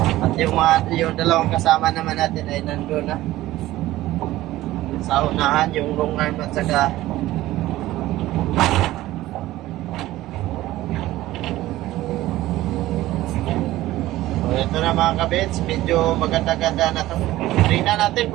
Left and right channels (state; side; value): quieter; left; 16.1 dB